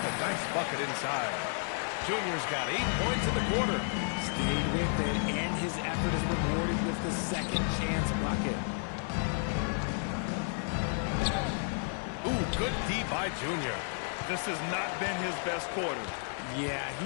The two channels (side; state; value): right; silent; 56 dB below the other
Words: nice bucket inside. Junior's got 8 points in the quarter. Stayed with it, and his effort is rewarded with the second chance bucket. Ooh, good D by Junior. This has not been his best quarter. Yeah,